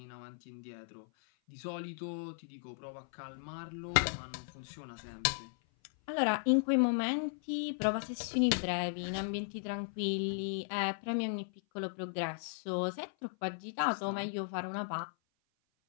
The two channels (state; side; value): silent; right; 54 dB below the other